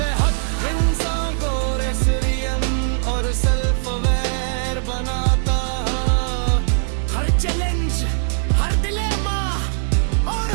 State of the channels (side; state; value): left; silent; digital silence